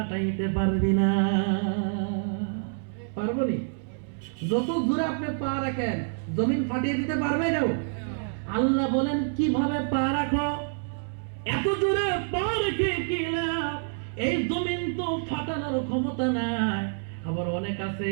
পারবি না। পারবনি? যত জোরে আপনি পা রাখেন জমিন ফাটিয়ে দিতে পারবে না। আল্লাহ বলেন কিভাবে পা রাখো? এত জোরে পা রেখে কি লাভ? এই জমিন তো ফাটানোর ক্ষমতা নাই। আবার অনেক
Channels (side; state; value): left; silent; 60 dB below the other